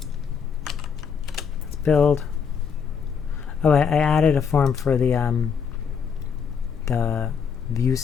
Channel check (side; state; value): right; quieter; 6.6 dB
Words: Let's build. Oh, I added a form for the view